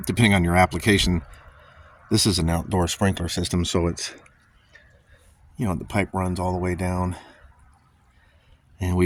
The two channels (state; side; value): identical; both; correlation 1.00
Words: depending on your application. This is an outdoor sprinkler system, so it's, the pipe runs all the way down, and